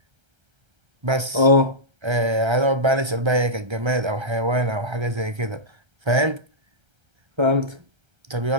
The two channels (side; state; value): left; late; 1.3 ms